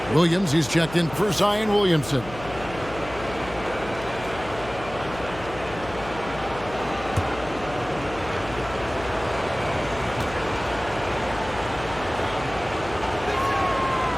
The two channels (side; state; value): left; noise; hum, 14 dB below the sound